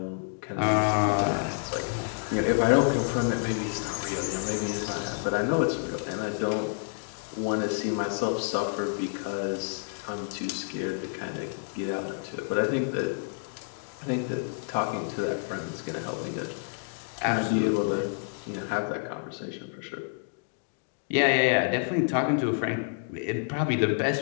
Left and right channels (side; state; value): right; silent; digital silence